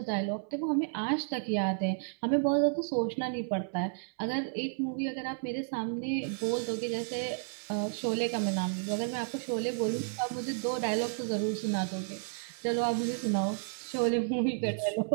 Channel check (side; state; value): left; silent; 56 dB below the other